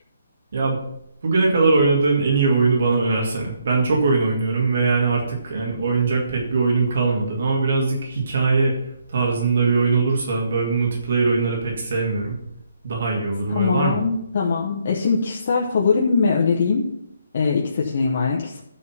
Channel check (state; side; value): inverted; both; correlation -0.72